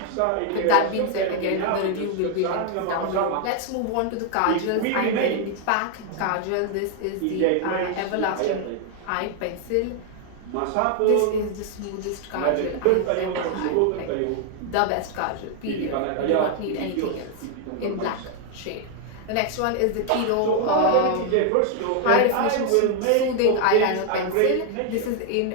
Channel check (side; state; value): both; different; correlation 0.00